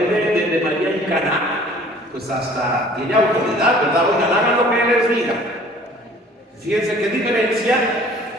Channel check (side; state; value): both; normal; correlation 0.51